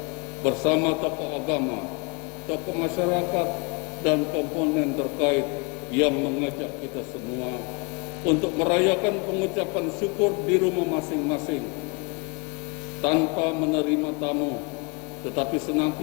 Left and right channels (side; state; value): right; quieter; 30.5 dB